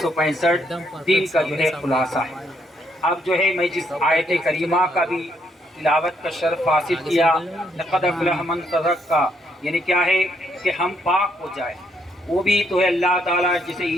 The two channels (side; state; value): both; normal; correlation 0.73